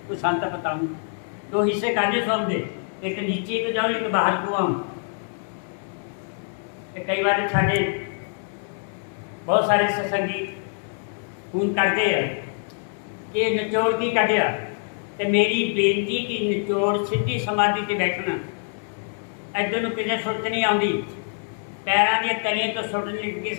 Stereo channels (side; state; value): right; silent; 62 dB below the other